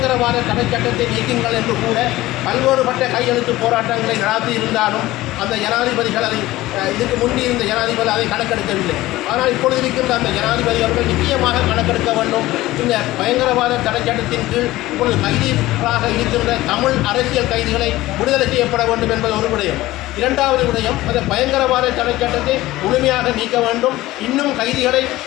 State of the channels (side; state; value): right; quieter; 17.2 dB